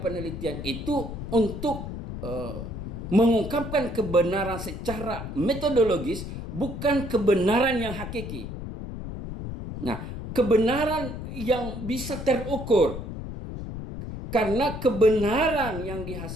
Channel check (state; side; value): noise; left; rumble, 7 dB below the sound